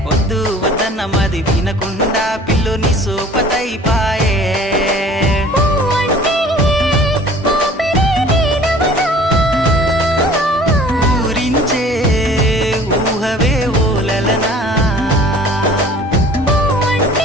వద్దు వద్దన్న మది వినకుండా పిల్లుని సోపతైపాయే ఊరించే ఊహవే ఓలలనా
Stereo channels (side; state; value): both; normal; correlation 0.48